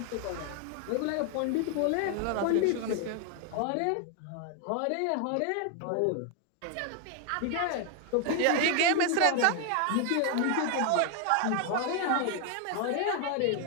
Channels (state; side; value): different; both; correlation 0.00